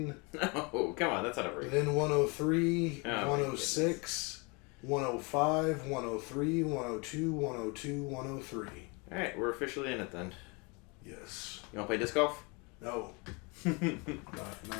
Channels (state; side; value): quieter; right; 30.1 dB